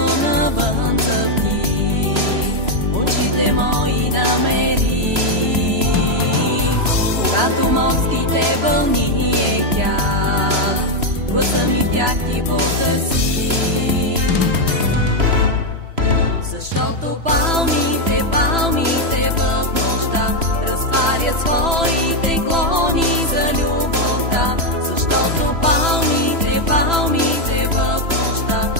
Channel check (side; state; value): left; late; 3.0 ms